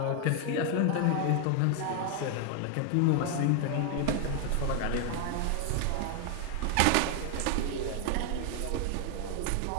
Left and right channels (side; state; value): both; different; correlation 0.00